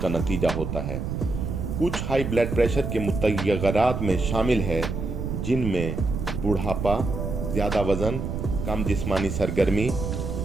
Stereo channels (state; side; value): noise; right; rumble, 4 dB below the sound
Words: नतीजा होता है। कुछ हाई ब्लड प्रेशर के मुतग़य्यरात में शामिल है जिनमें बुढ़ापा, ज़्यादा वज़न, कम जिस्मानी सरगर्मी,